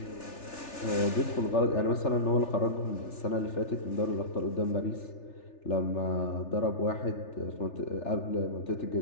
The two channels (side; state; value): right; late; 3.4 ms